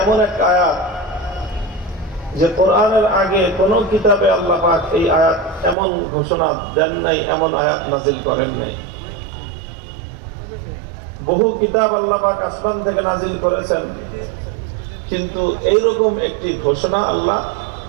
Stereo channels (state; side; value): drops out; left; at 5.8 s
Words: এমন এক আয়াত যে কোরআনের আগে কোন কিতাবে আল্লাহ পাক এই আয়াত এমন ঘোষণা দেন নাই, এমন আয়াত নাজিল করেন নাই। বহু কিতাব আল্লাহ পাক আসমান থেকে নাজিল করেছেন, কিন্তু এইরকম একটি ঘোষণা আল্লাহ